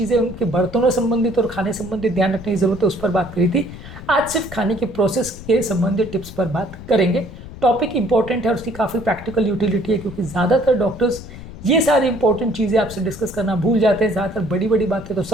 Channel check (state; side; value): noise; left; rumble, 14 dB below the sound